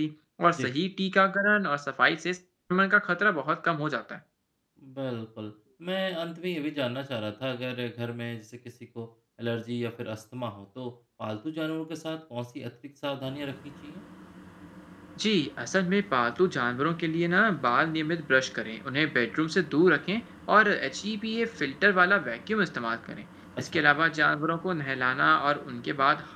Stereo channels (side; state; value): both; identical; correlation 1.00